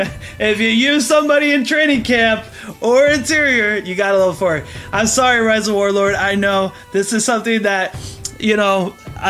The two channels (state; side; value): identical; both; correlation 1.00